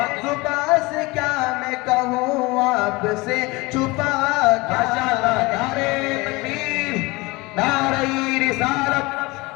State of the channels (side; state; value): right; quieter; 23.3 dB